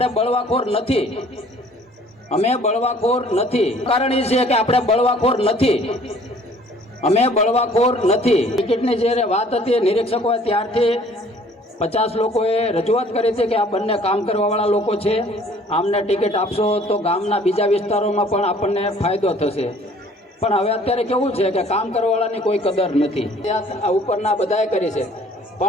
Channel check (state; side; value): normal; both; correlation 0.55